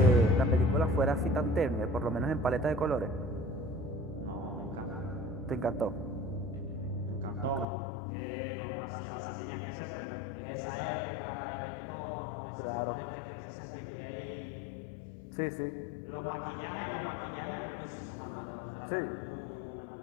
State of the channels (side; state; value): right; drops out; at 7.7 s